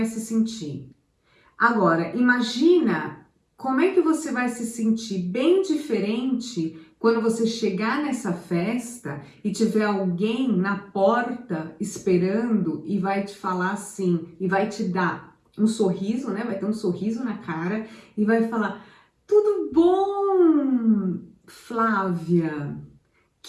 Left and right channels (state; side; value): identical; both; correlation 1.00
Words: se sentir? Agora, imagina como é que você vai se sentir bem diferente quando você chegar nessa festa e tiver alguém na porta esperando e vai te falar assim, e vai te dar um sorriso, né? Vai ter um sorriso na cara e vai falar: tudo bom, Flávia?